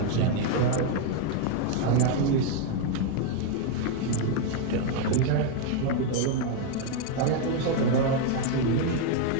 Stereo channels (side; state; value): both; different; correlation 0.01